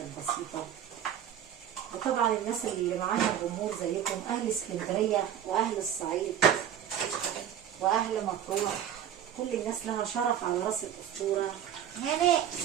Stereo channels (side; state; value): left; quieter; 9.9 dB